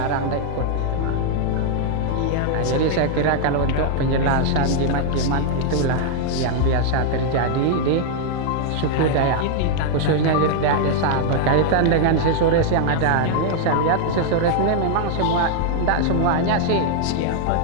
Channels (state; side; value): different; both; correlation 0.00